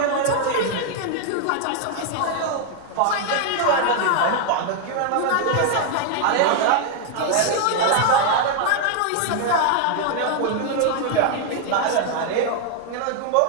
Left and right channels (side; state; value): both; different; correlation 0.00